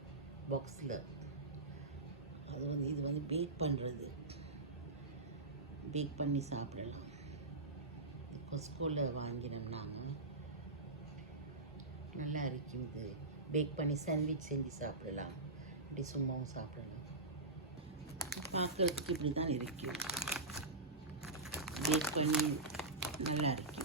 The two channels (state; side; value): quieter; left; 3.1 dB